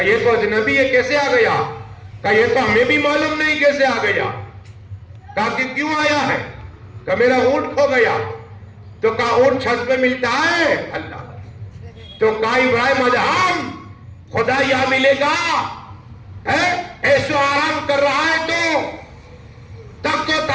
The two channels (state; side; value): identical; both; correlation 1.00